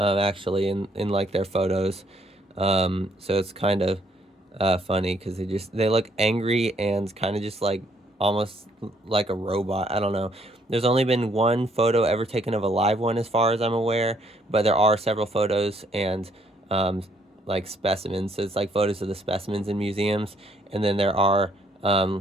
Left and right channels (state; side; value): normal; both; correlation 0.67